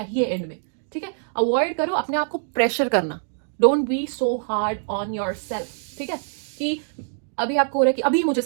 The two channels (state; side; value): silent; left; digital silence